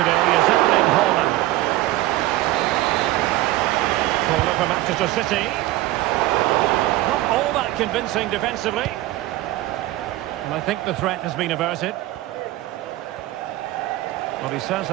is Erling Haaland. Corner for Manchester City. Not all that convincing defensively. And I think the threat has been averted. Well, he's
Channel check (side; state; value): left; quieter; 16.7 dB